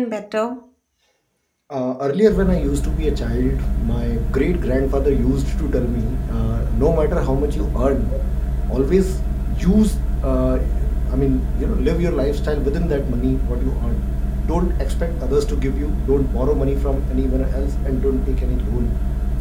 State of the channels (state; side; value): identical; both; correlation 1.00